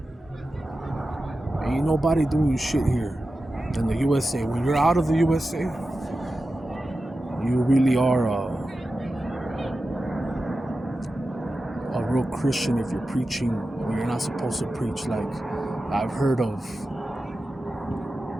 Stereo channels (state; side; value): normal; both; correlation 0.93